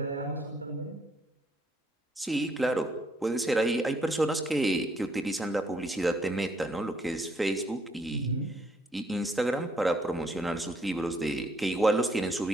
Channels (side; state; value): both; normal; correlation 0.69